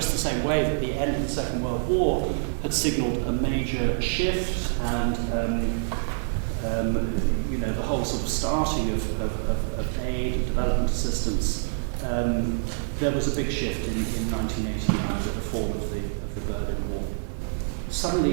the same way that the end of the Second World War had signalled a major shift, and you know, the whole sort of starting of aid and development assistance, there was a big shift in 1989 with the fall of the Berlin Wall.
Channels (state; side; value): silent; left; digital silence